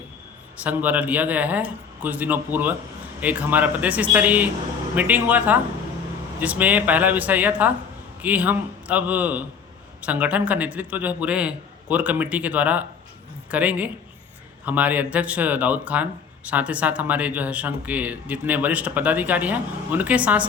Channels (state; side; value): quieter; right; 6.4 dB